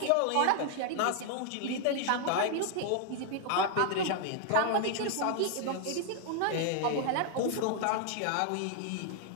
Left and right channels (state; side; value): different; both; correlation 0.00